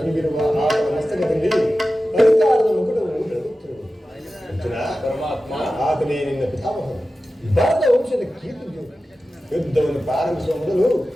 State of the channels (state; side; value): normal; both; correlation 0.94